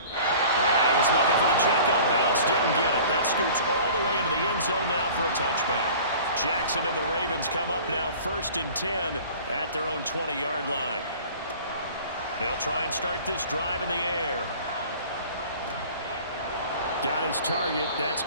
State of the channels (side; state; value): both; inverted; correlation -0.45